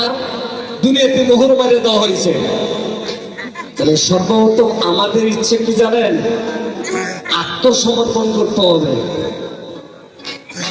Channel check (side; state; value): both; identical; correlation 1.00